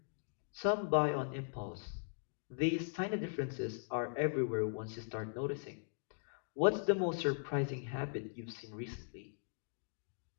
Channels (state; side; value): silent; right; digital silence